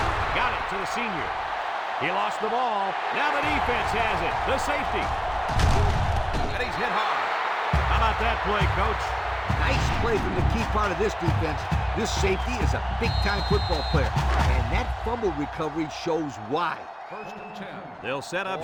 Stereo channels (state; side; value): identical; both; correlation 1.00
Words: Got it to the senior. He lost the ball. Now the defense has it. The safety. And he's hit hard. How about that play, Coach? Nice play from the key part of this defense. This safety is a big-time football player. And that fumble recovery shows why. First and 10. They'll set up